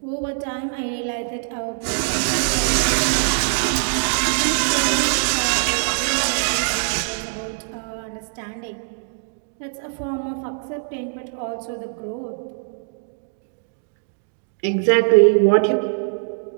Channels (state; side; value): silent; left; digital silence